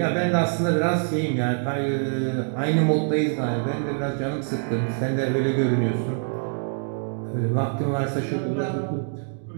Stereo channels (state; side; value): silent; left; 62 dB below the other